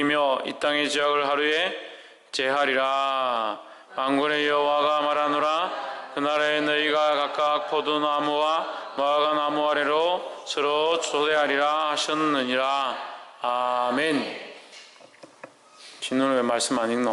이 땅의 죄악을 하루에 제하리라. 만군의 여호와가 말하노라. 그날에 너희가 각각 포도나무와 무화과나무 아래로 서로 초대하리라 하셨느니라. 아멘. 진노는 왜 말씀 안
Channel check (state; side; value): identical; both; correlation 1.00